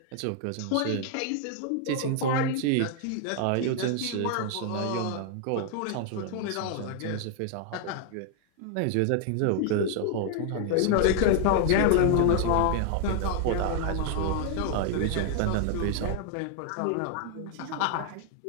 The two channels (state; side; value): different; both; correlation 0.00